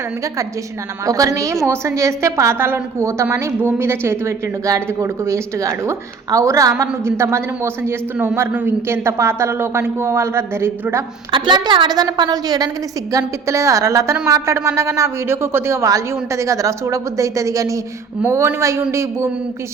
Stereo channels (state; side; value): quieter; left; 5.2 dB